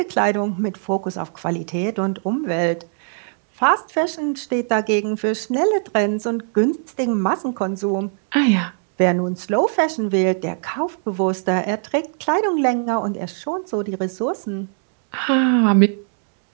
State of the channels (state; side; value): silent; left; digital silence